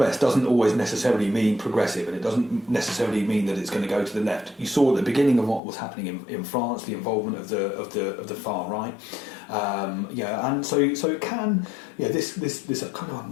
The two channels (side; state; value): right; drops out; at 5.6 s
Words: doesn't always necessarily mean progressive, and it doesn't necessarily mean that it's going to go to the left. You saw at the beginning of what was happening in France, the involvement of the far right, and so it can, this kind of